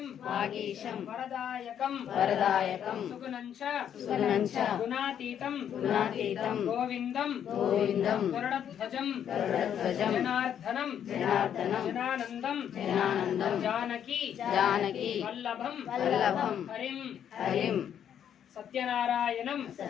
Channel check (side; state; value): right; quieter; 9.2 dB